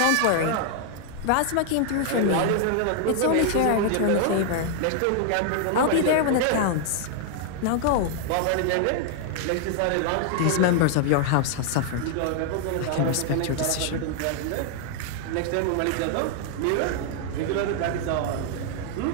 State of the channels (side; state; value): both; different; correlation 0.00